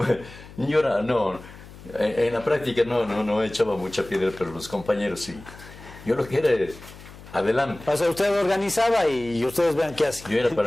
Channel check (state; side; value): noise; left; hum, 18 dB below the sound